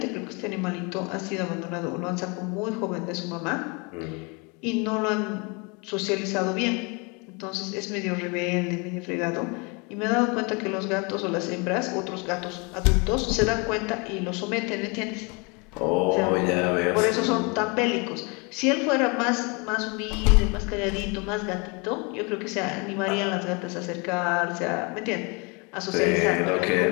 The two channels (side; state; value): right; quieter; 30.6 dB